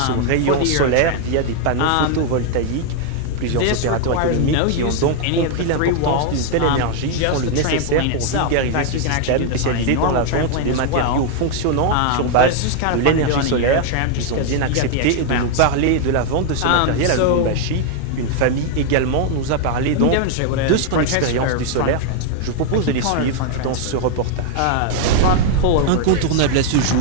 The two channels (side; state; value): both; different; correlation 0.00